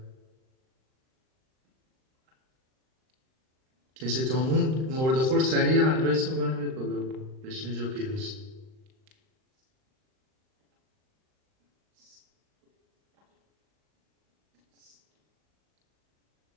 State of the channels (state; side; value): late; left; 38 ms